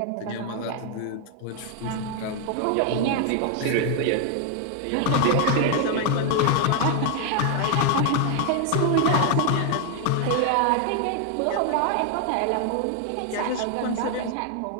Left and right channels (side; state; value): both; different; correlation 0.00